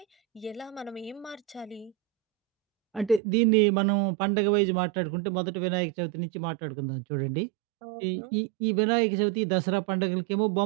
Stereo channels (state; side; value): drops out; left; at 3.2 s